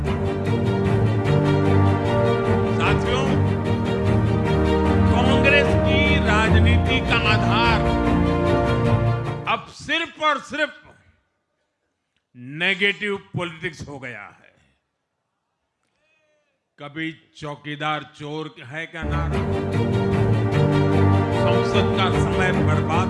साथियों, कांग्रेस की राजनीति का आधार अब सिर्फ और सिर्फ नेगेटिव पॉलिटिक्स हो गया है। कभी चौकीदार चोर है का नारा, संसद का समय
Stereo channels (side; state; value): both; identical; correlation 1.00